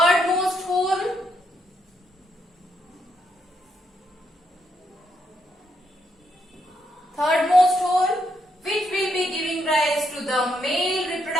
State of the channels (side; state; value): both; normal; correlation 0.77